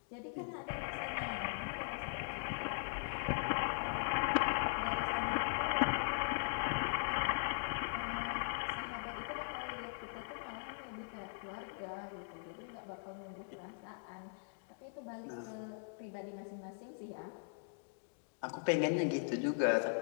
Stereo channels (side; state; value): right; silent; digital silence